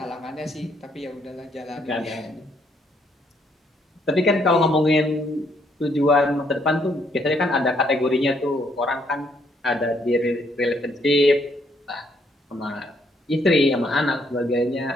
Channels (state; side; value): normal; both; correlation 0.70